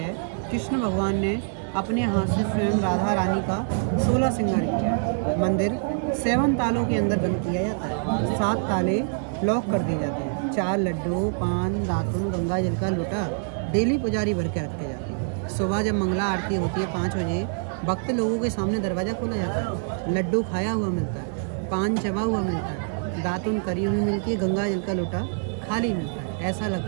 कृष्ण भगवान ने अपने हाथ से स्वयं राधा रानी का 16 श्रृंगार किया। मंदिर 7 तालों के अंदर बंद किया जाता है। 7 ताले लॉक कर दिए जाते हैं। 4 लड्डू, पान, दातुन, गंगा जल का लोटा डेली पुजारी भर के रखे जाते हैं। सुबह जब मंगला आरती होती है 5 बजे, भक्त लोगों के सामने दरवाज़ा खोला जाता है। लड्डू खाया हुआ मिलता है, पान चबा हुआ मिलता है, दातुन करी हुई मिलती है, गंगा जल का लोटा खाली मिलता है। ऐसा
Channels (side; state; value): left; silent; digital silence